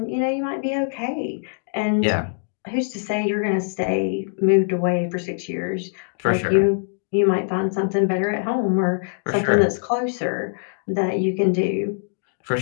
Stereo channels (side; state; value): right; silent; digital silence